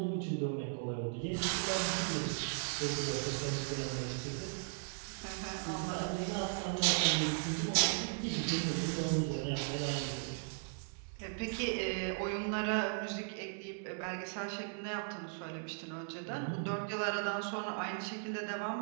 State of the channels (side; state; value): left; silent; digital silence